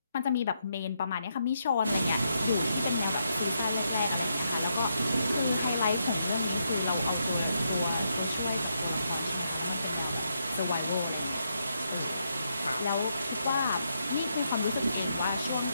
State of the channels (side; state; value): both; inverted; correlation -0.80